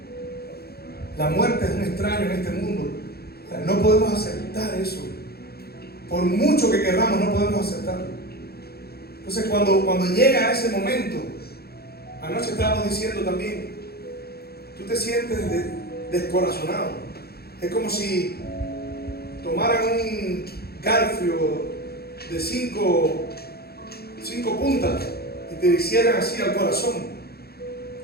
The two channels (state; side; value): late; right; 0.46 ms